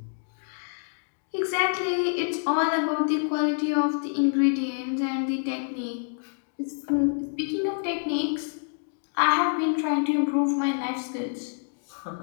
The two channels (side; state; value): right; silent; digital silence